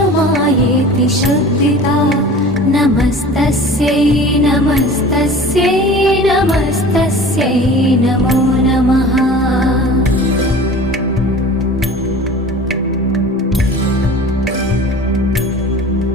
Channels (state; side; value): normal; both; correlation 0.40